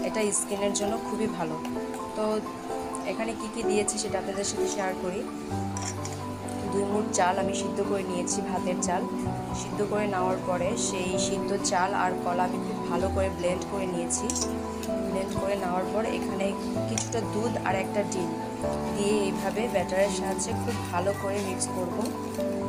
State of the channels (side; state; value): both; identical; correlation 1.00